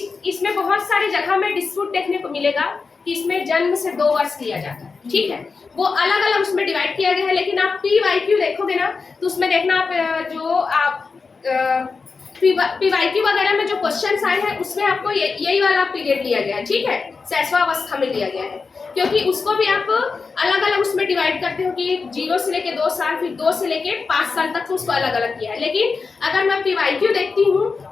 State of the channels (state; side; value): quieter; right; 4.7 dB